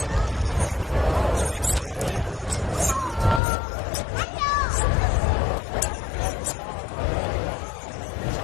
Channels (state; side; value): drops out; right; at 3.4 s